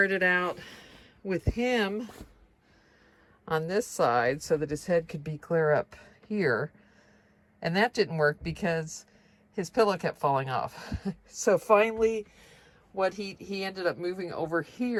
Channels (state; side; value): identical; both; correlation 1.00